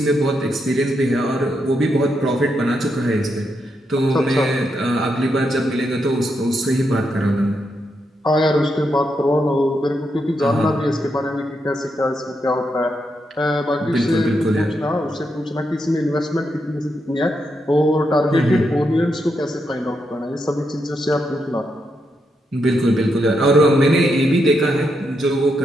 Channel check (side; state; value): both; normal; correlation 0.82